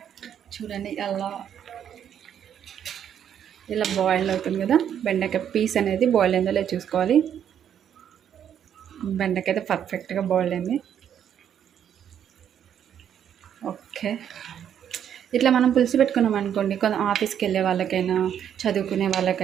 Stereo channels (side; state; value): left; quieter; 9.2 dB